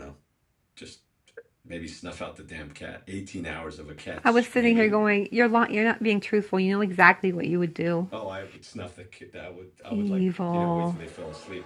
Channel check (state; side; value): identical; both; correlation 1.00